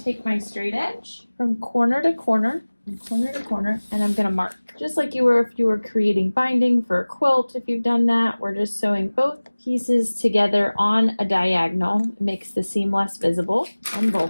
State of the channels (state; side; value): inverted; both; correlation -1.00